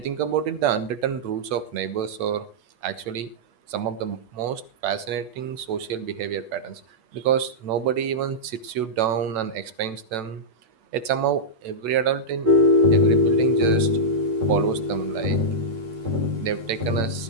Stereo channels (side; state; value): left; late; 8.9 ms